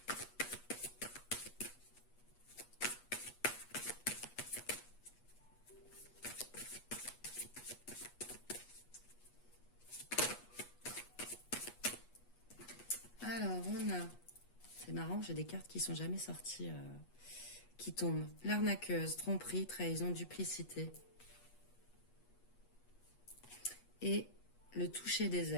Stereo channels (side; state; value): right; late; 8.3 ms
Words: Alors, on a... C'est marrant, j'ai des cartes qui sont jamais sorties, qui tombent. L'arnaqueuse, tromperie, trahison, duplicité. Et le toucher des